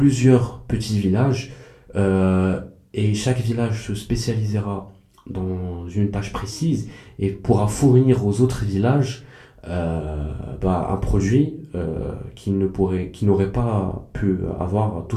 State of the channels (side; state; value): both; identical; correlation 1.00